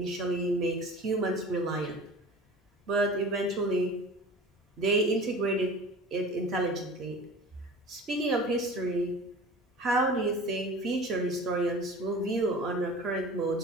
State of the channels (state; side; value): normal; both; correlation 0.40